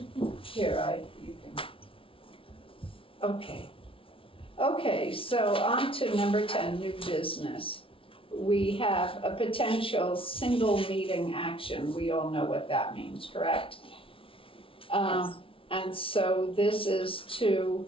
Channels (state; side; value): late; right; 0.26 ms